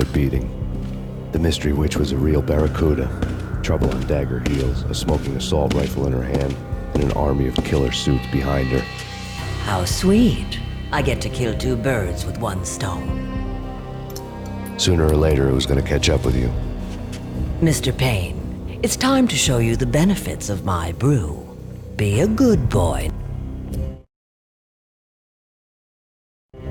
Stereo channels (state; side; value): identical; both; correlation 1.00